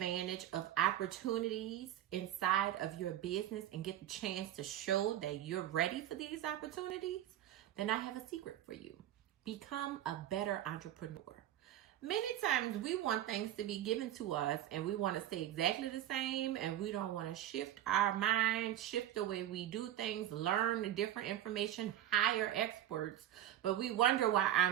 of opportunities inside of your business and get the chance to show that you're ready for these opportunities? Then I have a secret for you. Become a better entrepreneur. Many times we want things to be given to us and we want to stay exactly the same, and we don't want to shift our mind, shift the way we do things, learn different information, hire experts, but we wonder why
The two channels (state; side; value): quieter; left; 12.0 dB